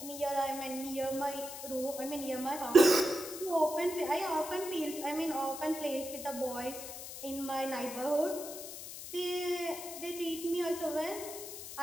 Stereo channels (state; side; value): noise; left; hiss, 10 dB below the sound